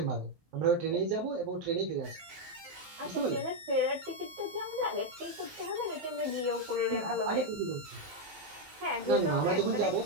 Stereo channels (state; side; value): late; left; 18 ms